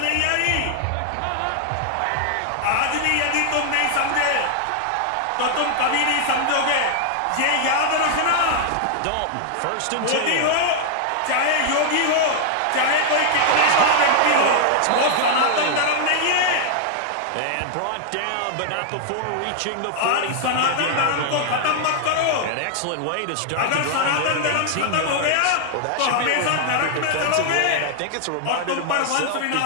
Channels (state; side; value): different; both; correlation 0.00